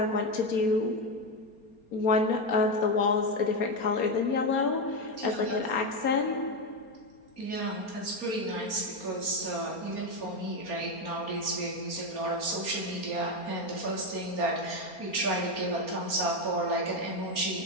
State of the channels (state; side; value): late; right; 4.3 ms